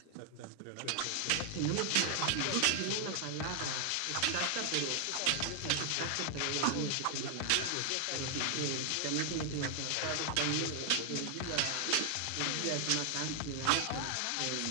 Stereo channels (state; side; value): different; both; correlation 0.00